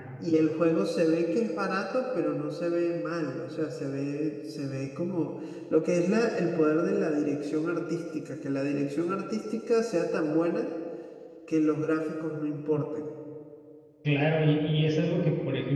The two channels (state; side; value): identical; both; correlation 1.00